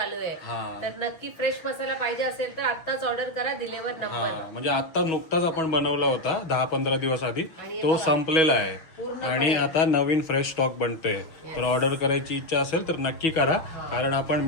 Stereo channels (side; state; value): right; late; 6.3 ms